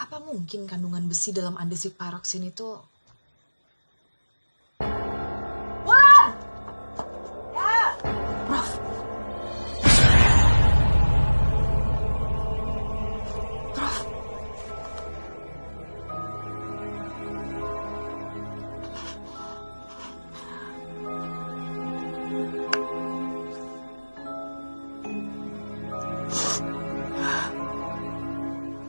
mungkin kandungan besi dalam andesit paroksin itu. Wulan! Ya! Prof. Prof.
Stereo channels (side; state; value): both; inverted; correlation -1.00